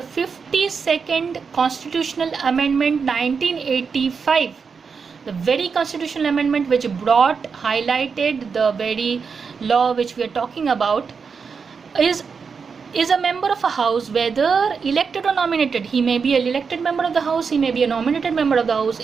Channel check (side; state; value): left; quieter; 5.6 dB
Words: 52nd Constitutional Amendment 1985, the very constitutional amendment which highlighted the very law which we are talking about, is a member of a house, whether elected or nominated. He may be an elected member of the house, he may be a nominated member of the house,